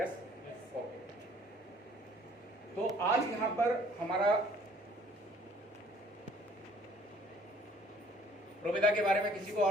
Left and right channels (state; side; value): normal; both; correlation 0.57